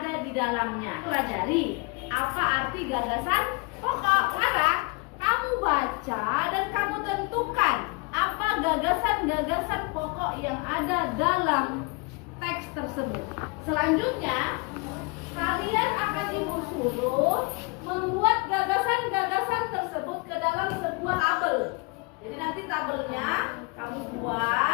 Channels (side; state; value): right; quieter; 29.4 dB